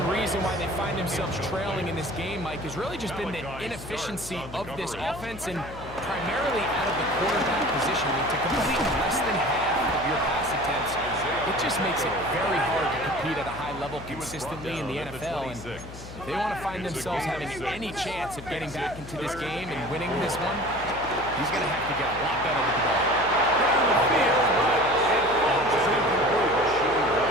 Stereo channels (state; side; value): noise; left; hum, 14 dB below the sound